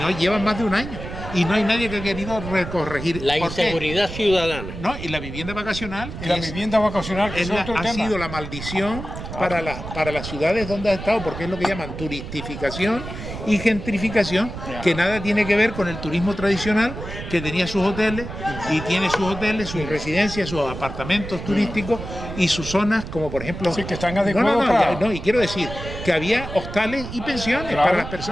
llevan más de un año. Y no hay nadie que ha querido corregir. La ¿Por qué? inseguridad ciudadana. No, y la vivienda vacacional, Y la que es- vivienda vacacional, que es otro ha tema. sido la maldición para las ciudades donde ha estado, porque es lo que llaman turistificación y gentrificación, Ya. que nada tiene que ver con el turismo tradicional, que tenía sus hoteles y tiene sus hoteles, sus residencias, sus apartamentos turísticos y sus zonas, como por ejemplo... Sí, que están adecuados para- y quiero decir que había hostales y pensiones Claro. para las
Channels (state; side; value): noise; right; rumble, 9 dB below the sound